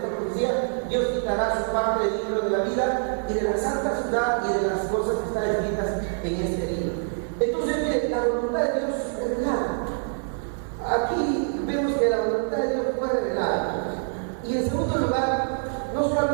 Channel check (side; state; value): left; silent; digital silence